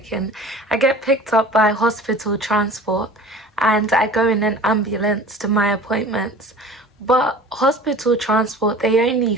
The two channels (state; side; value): normal; both; correlation 0.42